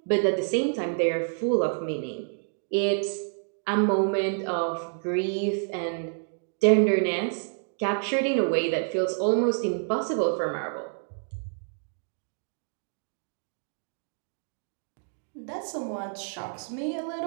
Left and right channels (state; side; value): silent; left; digital silence